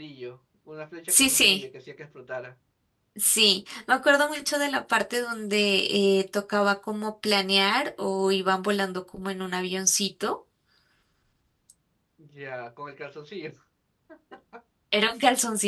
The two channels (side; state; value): both; identical; correlation 1.00